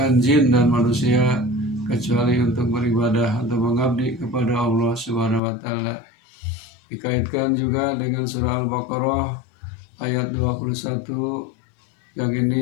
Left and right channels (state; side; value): drops out; right; at 5.4 s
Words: jin dan manusia kecuali untuk beribadah, untuk mengabdi kepada Allah Subhanahu wa taala. Dikaitkan juga dengan surah Al-Baqarah ayat 21 yang